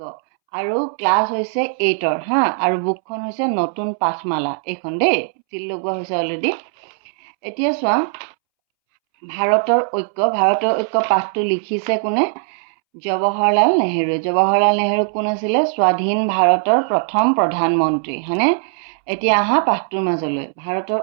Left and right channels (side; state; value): left; silent; 66 dB below the other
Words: আৰু ক্লাছ হৈছে 8ৰ আৰু বুকখন হৈছে নতুন পাঠমালা। এইখন দেই চিল লগোৱা হৈছে অলৰেডি। এতিয়া চোৱা, ভাৰতৰ ঐক্য পাঠটো লিখিছে কোনে? জৱাহৰলাল নেহেৰুৱে। জৱাহৰলাল নেহেৰু কোন আছিলে? স্বাধীন ভাৰতৰ প্ৰথম প্ৰধানমন্ত্ৰী, হয়নে? এতিয়া আহা পাঠটোৰ মাজলৈ। ভাৰতৰ